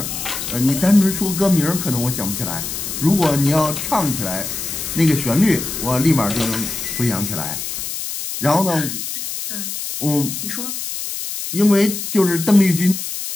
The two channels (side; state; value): left; noise; hiss, 6 dB below the sound